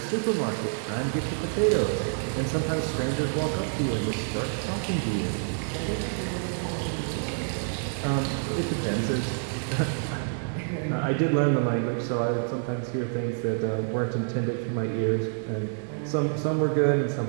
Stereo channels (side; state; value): left; silent; digital silence